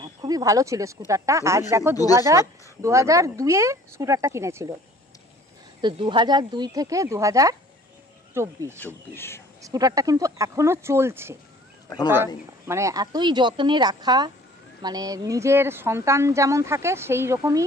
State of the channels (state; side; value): normal; both; correlation 0.52